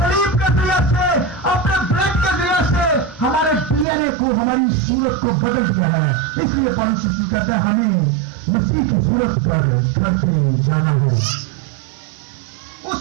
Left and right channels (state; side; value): drops out; left; at 3.9 s